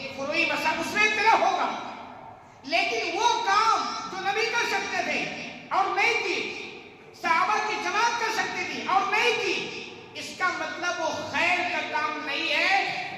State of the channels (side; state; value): both; identical; correlation 1.00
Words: فروعی مسائل، اس میں اختلاف ہوگا، لیکن وہ کام جو نبی کر سکتے تھے اور نہیں کی، صحابہ کی جماعت کر سکتی تھی اور نہیں کی، اس کا مطلب وہ خیر کا کام نہیں